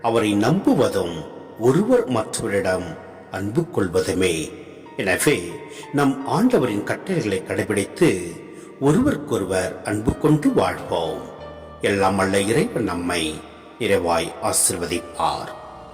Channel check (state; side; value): identical; both; correlation 1.00